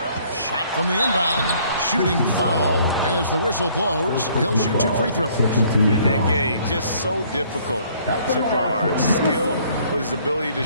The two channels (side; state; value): both; inverted; correlation -0.61